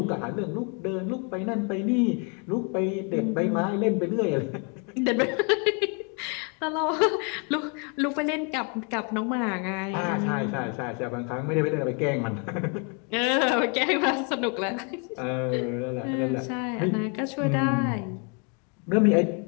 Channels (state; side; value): quieter; right; 36.5 dB